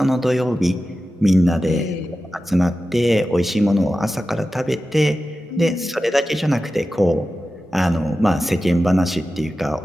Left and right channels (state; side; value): normal; both; correlation 0.93